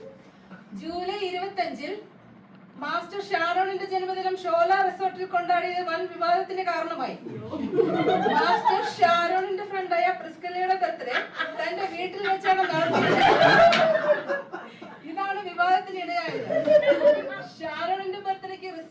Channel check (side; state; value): both; identical; correlation 1.00